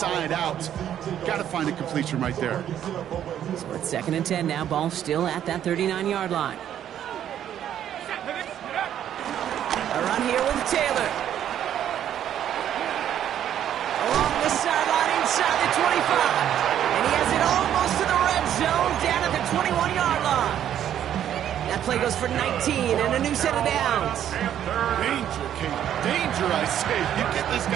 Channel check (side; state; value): left; quieter; 10.4 dB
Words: out. Got to find a completion right there. So it's 2nd and 10 now. Ball still at that 39-yard line. A run here with Taylor. Along the sideline inside the 25. And he has it almost to the red zone down at the 21-yard line. That play goes for 19 and a new set of downs. Danger, Kate. Danger, I say. You get this